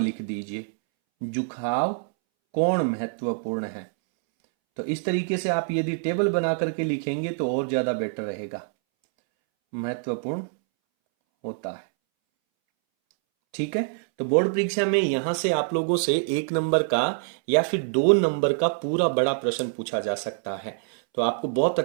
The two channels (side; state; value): left; silent; 61 dB below the other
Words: लिख दीजिए, झुकाव कोण महत्वपूर्ण है। तो इस तरीके से आप यदि टेबल बना करके लिखेंगे तो और ज्यादा बेटर रहेगा, महत्वपूर्ण होता है, ठीक है। तो बोर्ड परीक्षा में यहां से आप लोगों से 1 नंबर का या फिर 2 नंबर का पूरा बड़ा प्रश्न पूछा जा सकता है, तो आपको बहुत